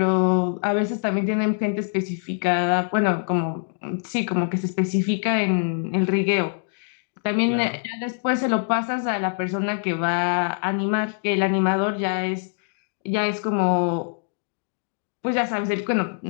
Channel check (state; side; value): silent; right; digital silence